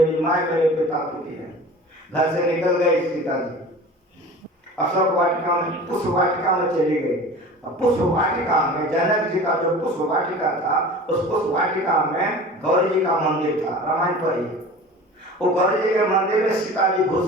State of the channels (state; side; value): normal; both; correlation 0.39